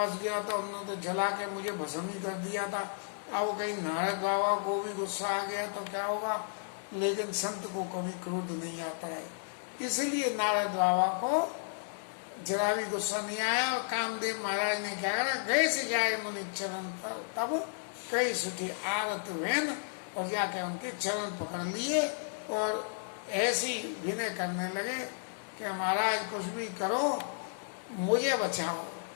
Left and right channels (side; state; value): right; silent; digital silence